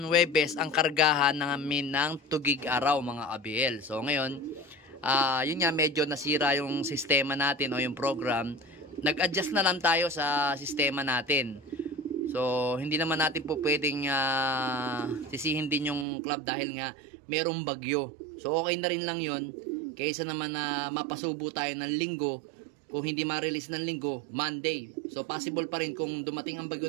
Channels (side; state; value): left; drops out; at 16.1 s